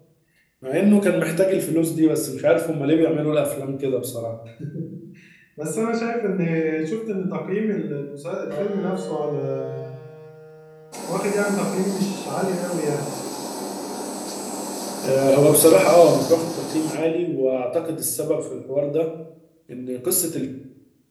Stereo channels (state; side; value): identical; both; correlation 1.00